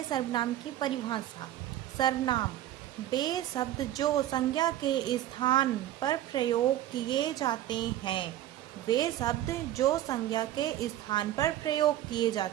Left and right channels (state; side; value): quieter; left; 13.1 dB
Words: सर्वनाम की परिभाषा। सर्वनाम वे शब्द जो संज्ञा के स्थान पर प्रयोग किए जाते हैं। वे शब्द जो संज्ञा के स्थान पर प्रयोग किए